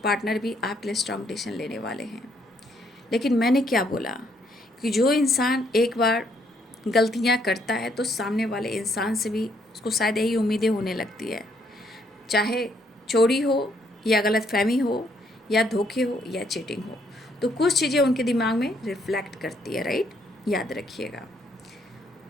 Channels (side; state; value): both; normal; correlation 0.70